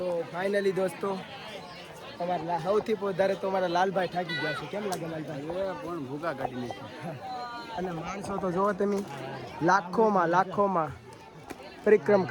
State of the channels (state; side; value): identical; both; correlation 1.00